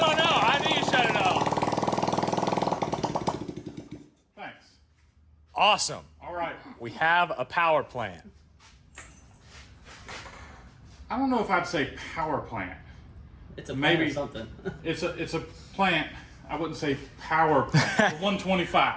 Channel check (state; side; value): identical; both; correlation 1.00